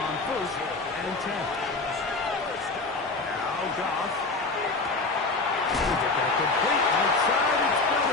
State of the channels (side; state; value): right; quieter; 3.6 dB